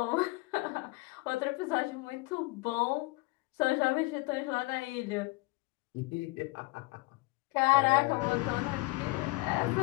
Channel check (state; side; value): quieter; right; 24.2 dB